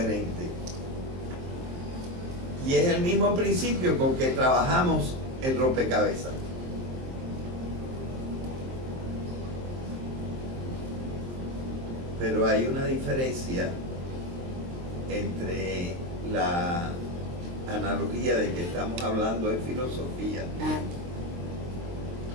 Y es el mismo principio con que trabajamos el rompecabezas. Pero hay una diferencia entre la analogía de que estamos hablando en filosofía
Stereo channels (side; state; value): left; late; 23 ms